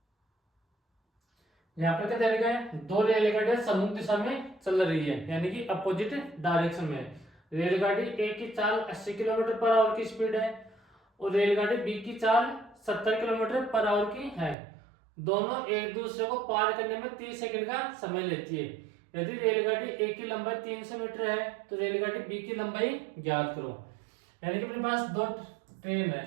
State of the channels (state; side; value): drops out; left; at 14.6 s